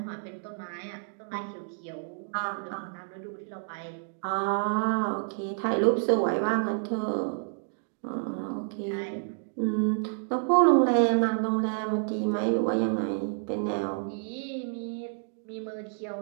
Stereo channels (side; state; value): left; silent; 58 dB below the other